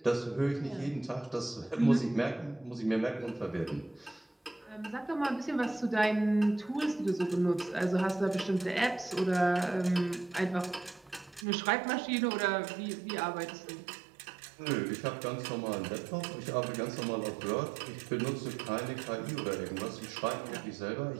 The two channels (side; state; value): left; drops out; at 11.5 s